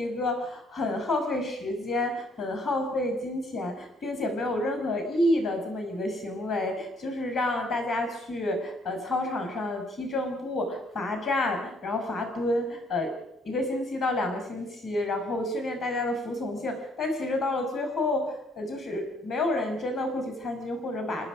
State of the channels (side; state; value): both; normal; correlation 0.65